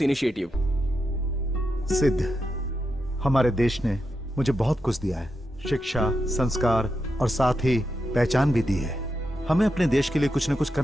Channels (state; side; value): normal; both; correlation 0.86